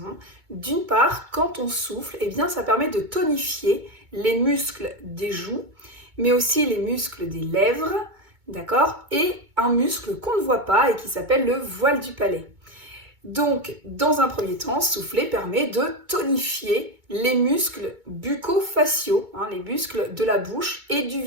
D'une part, quand on souffle, ça permet de tonifier les muscles des joues, mais aussi les muscles des lèvres, d'accord? Et un muscle qu'on ne voit pas et qui s'appelle le voile du palais. Donc, dans un premier temps, souffler permet de tonifier les muscles bucco-faciaux, les muscles de la bouche et du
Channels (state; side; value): late; left; 2.2 ms